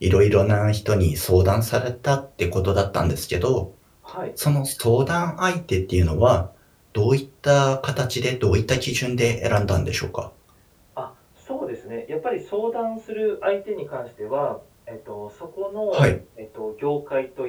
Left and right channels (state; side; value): identical; both; correlation 1.00